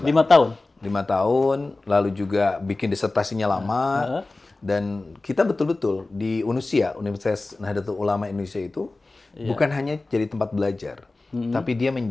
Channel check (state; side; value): quieter; right; 3.2 dB